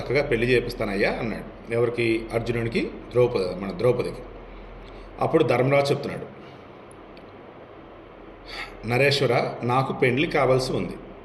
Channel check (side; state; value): both; identical; correlation 1.00